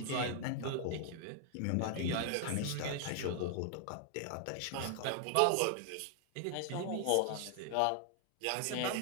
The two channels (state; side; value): different; both; correlation 0.00